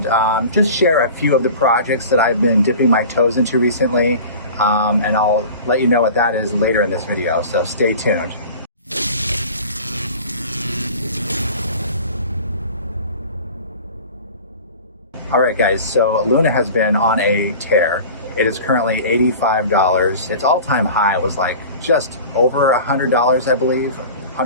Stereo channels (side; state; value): both; inverted; correlation -0.39